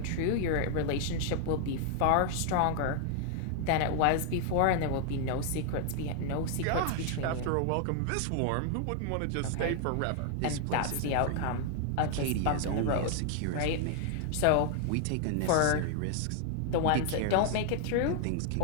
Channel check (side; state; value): both; different; correlation 0.00